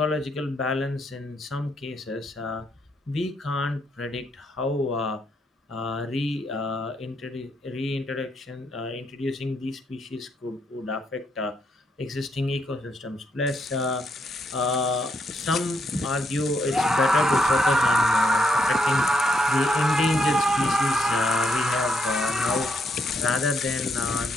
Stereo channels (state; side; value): normal; both; correlation 0.77